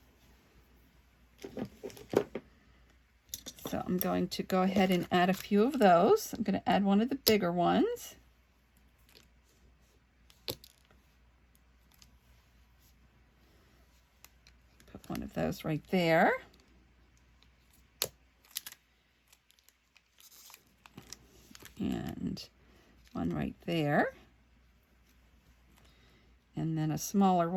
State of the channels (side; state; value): both; identical; correlation 1.00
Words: So I'm going to go ahead and add a few of those. I'm going to add one of the bigger ones. Put one of those right there. And one right there. And then a smaller